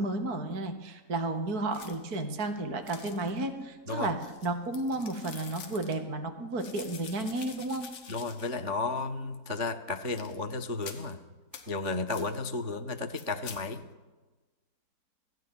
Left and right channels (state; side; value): late; left; 3.5 ms